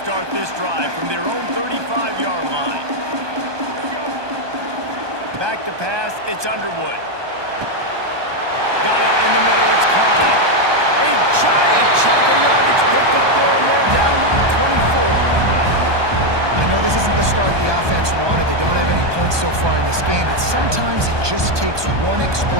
this drive from their own 35-yard line. Back to pass, it's Underwood. Got it in the middle, it's Klein. A giant chunk of yardage picked up there, and they're down to the 24. I know this isn't the start the offense wanted. They don't have any points so far in this game, but sometimes it just takes one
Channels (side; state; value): left; late; 1.2 ms